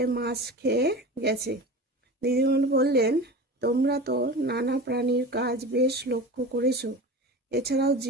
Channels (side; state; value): both; normal; correlation 0.32